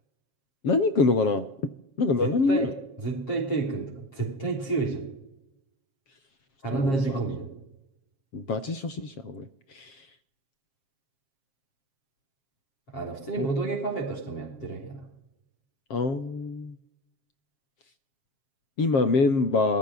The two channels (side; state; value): right; late; 7.4 ms